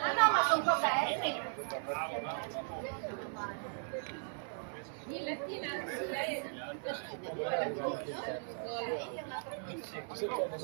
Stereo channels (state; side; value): silent; left; 53 dB below the other